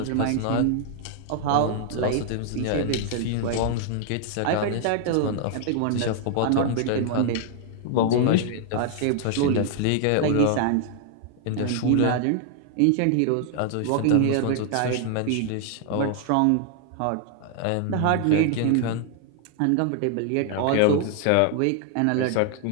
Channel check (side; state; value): both; different; correlation 0.00